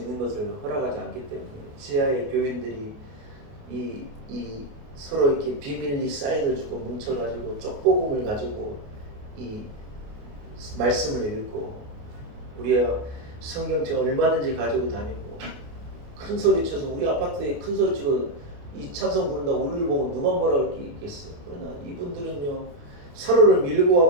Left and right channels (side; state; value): left; late; 28 ms